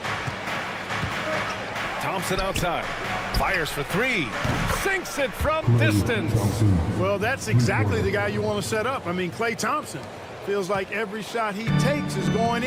Thompson outside. Fires for 3. Sinks it from distance. Well, that's exactly the guy you want to set up. I mean, Klay Thompson feels like every shot he takes is going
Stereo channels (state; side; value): identical; both; correlation 1.00